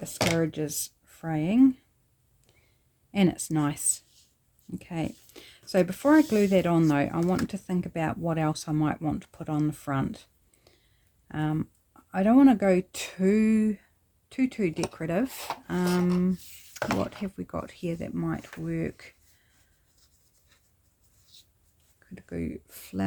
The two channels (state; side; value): identical; both; correlation 1.00